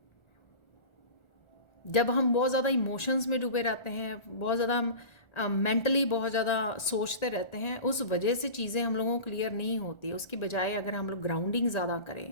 जब हम बहुत ज़्यादा इमोशंस में डूबे रहते हैं, बहुत ज़्यादा हम मेंटली बहुत ज़्यादा सोचते रहते हैं, उस वजह से चीज़ें हम लोगों को क्लियर नहीं होती। उसकी बजाय अगर हम लोग ग्राउंडिंग ज़्यादा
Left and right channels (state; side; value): late; right; 1.4 ms